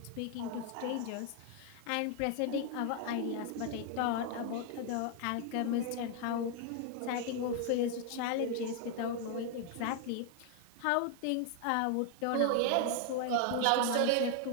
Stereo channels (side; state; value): both; different; correlation 0.00